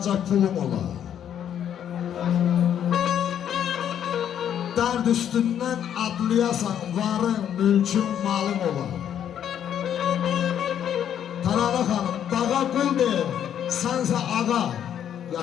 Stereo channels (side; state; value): right; quieter; 9.6 dB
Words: pulum ola. Dərd üstündən adlayasan, varın, mülkün, malın ola. Taralı xanım, dağa qul deyir, sənsə ağa,